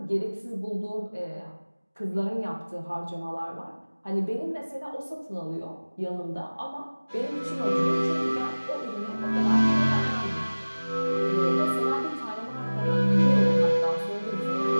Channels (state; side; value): inverted; both; correlation -1.00